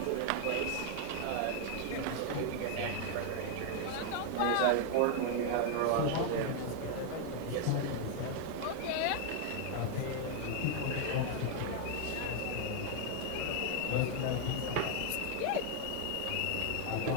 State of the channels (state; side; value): different; both; correlation 0.00